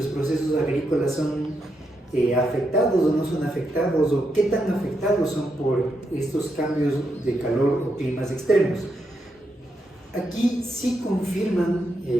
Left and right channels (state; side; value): normal; both; correlation 0.82